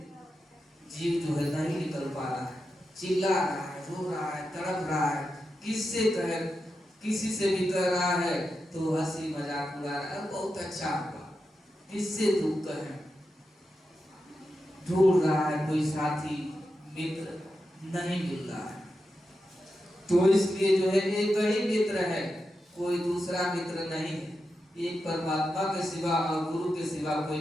जीव जो है नहीं निकल पा रहा है, चिल्ला रहा है, रो रहा है, तड़प रहा है, किससे कहे, किसी से भी कह रहा है तो हंसी मजाक उड़ा रहा है, बहुत अच्छा हुआ, किससे दुख कहे, ढूंढ रहा है कोई साथी मित्र, नहीं मिल रहा है। तो इसलिए जो है एक ही मित्र है, कोई दूसरा मित्र नहीं है। एक परमात्मा के सिवा और गुरु के सिवा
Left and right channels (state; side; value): normal; both; correlation 0.89